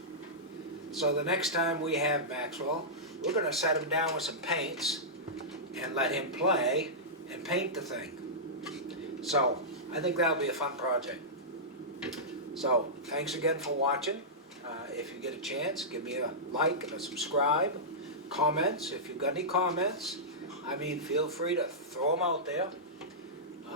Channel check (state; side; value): normal; both; correlation -0.13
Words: So the next time we have Maxwell, we're going to set him down with some paints and let him play and paint the thing. So I think that'll be a fun project. So thanks again for watching. If you get a chance, give me a like and a subscribe. Comments, if you've got any comments, I mean, feel free to throw them out there.